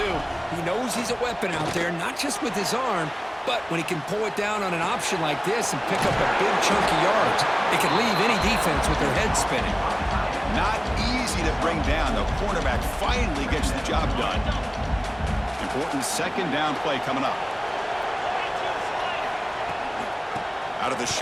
He knows he's a weapon out there, not just with his arm, but when he can pull it down on an option like this and pick up a big chunk of yards, it can leave any defense with their head spinning. Not easy to bring down. The cornerback finally gets the job done. Important second down play coming up. Out of the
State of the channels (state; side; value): identical; both; correlation 1.00